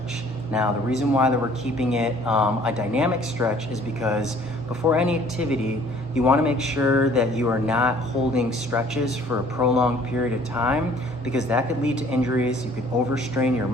Now, the reason why that we're keeping it a dynamic stretch is because before any activity, you want to make sure that you are not holding stretches for a prolonged period of time, because that could lead to injuries. You could overstrain your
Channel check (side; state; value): both; normal; correlation 0.56